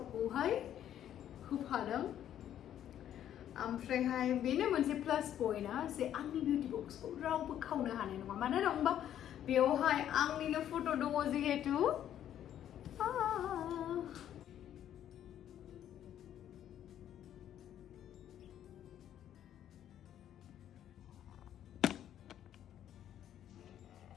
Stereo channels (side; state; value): right; quieter; 10.8 dB